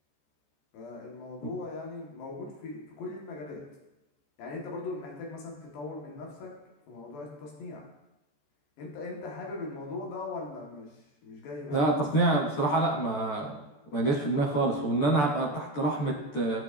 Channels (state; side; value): late; right; 14 ms